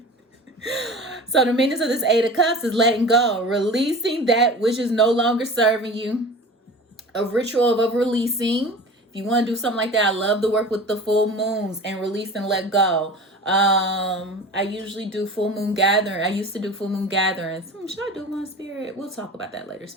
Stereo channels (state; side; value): normal; both; correlation 0.37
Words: So the meaning of this Eight of Cups is letting go, releasing that which is no longer serving you. A ritual of releasing. If you want to do something like that, I love to work with the full moons and release and let go. I usually do full moon gathering. I used to do full moon gatherings. Should I do one, Spirit? We'll talk about that later,